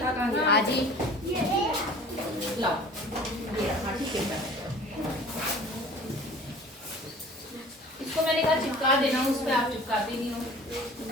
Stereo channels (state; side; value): normal; both; correlation 0.45